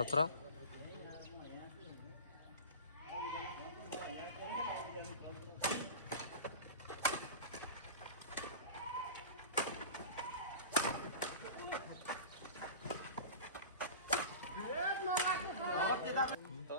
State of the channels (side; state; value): both; inverted; correlation -0.32